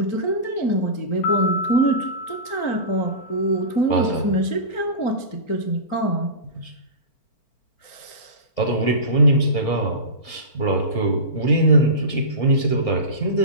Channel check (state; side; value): late; right; 4.4 ms